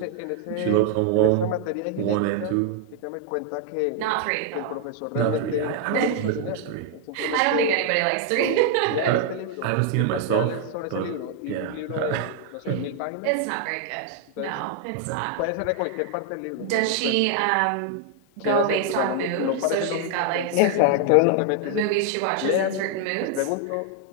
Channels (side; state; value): both; different; correlation 0.00